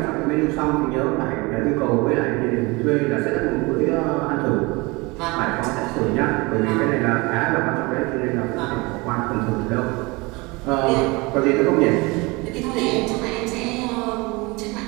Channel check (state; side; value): quieter; left; 25.2 dB